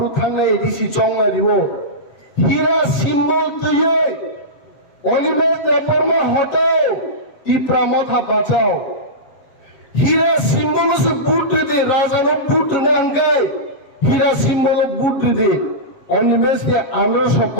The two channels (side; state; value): right; late; 7.7 ms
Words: থানে এডিসি চংলা দিব হীরা সিম্বল তুই অনিমেষ দেববর্মা হটাও টিপ্রা মাথা বাঁচাও হীরা সিম্বল সে বুট দে রাজানো বুট নাঙ্গাই হীরা সিম্বল বুট দে অনিমেষ কে আমরা সব